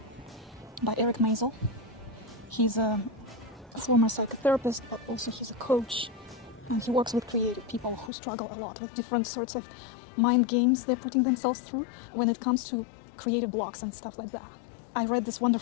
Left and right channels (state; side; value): drops out; right; at 8.1 s